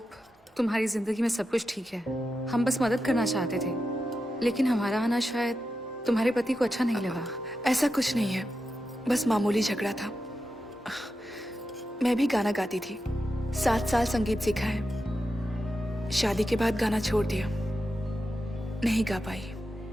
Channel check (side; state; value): both; normal; correlation 0.89